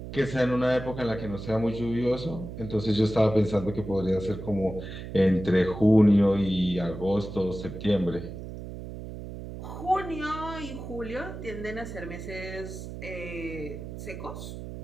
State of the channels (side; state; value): right; noise; hum, 10 dB below the sound